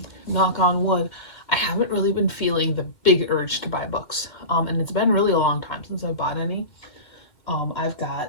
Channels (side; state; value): right; late; 2.1 ms